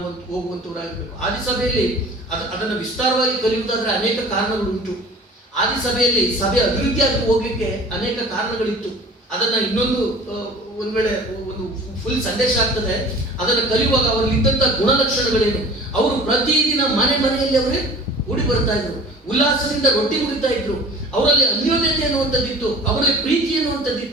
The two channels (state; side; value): normal; both; correlation 0.44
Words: ಹೋಗುವಂತವರಾಗಬೇಕು. ಆದಿಸಭೆಯಲ್ಲಿ ಅದನ್ನು ವಿಸ್ತಾರವಾಗಿ ಕಲಿಯುವುದಾದ್ರೆ ಅನೇಕ ಕಾರಣಗಳು ಉಂಟು. ಆದಿಸಭೆಯಲ್ಲಿ ಸಭೆ ಅಭಿವೃದ್ಧಿ ಆಗಿ ಹೋಗ್ಲಿಕ್ಕೆ ಅನೇಕ ಕಾರಣಗಳಿತ್ತು. ಅದನ್ನ ಇನ್ನೊಂದು ಒಂದ್ ವೇಳೆ ಒಂದು ಫುಲ್ ಸಂದೇಶ ಆಗ್ತದೆ. ಅದನ್ನು ಕಲಿಯುವಾಗ ಅವರಲ್ಲಿ ಇದ್ದಂತ ಗುಣಲಕ್ಷಣಗಳೇನು, ಅವರು ಪ್ರತಿದಿನ ಮನೆಯಲ್ಲಿ ಅವರೇ ಕೂಡಿ ಬರ್ತಾ ಇದ್ರು, ಉಲ್ಲಾಸದಿಂದ ರೊಟ್ಟಿ ಮುಗಿತಾ ಇದ್ರು, ಅವರಲ್ಲಿ ಅನ್ಯೋನ್ಯತೆ ಅನ್ನುವಂಥದ್ದಿತ್ತು, ಅವರಲ್ಲಿ ಪ್ರೀತಿ